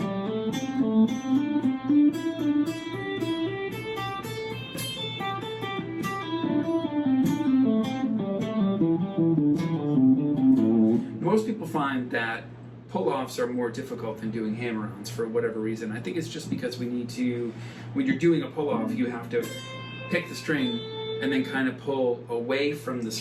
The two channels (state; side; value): identical; both; correlation 1.00